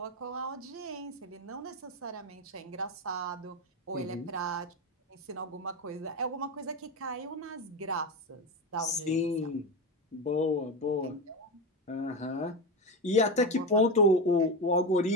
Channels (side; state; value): both; normal; correlation 0.17